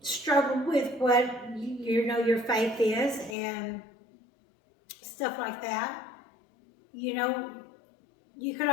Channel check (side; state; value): right; drops out; at 3.4 s